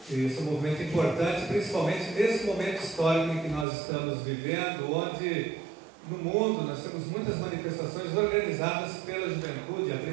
Esse é um movimento importante, principalmente nesse momento histórico em que nós estamos vivendo, onde no mundo nós temos muitas manifestações organizadas pela juventude. A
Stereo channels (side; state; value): left; drops out; at 3.7 s